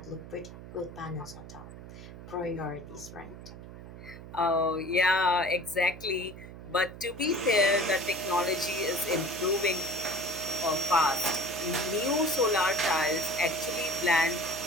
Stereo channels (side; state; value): right; noise; hum, 14 dB below the sound